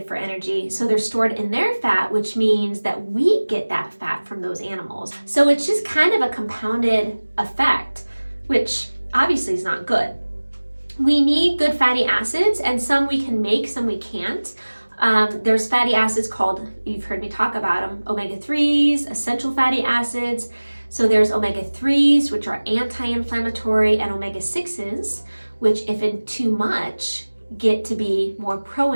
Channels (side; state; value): both; inverted; correlation -1.00